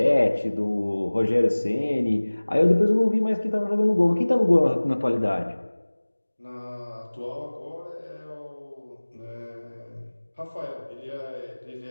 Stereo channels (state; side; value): inverted; both; correlation -1.00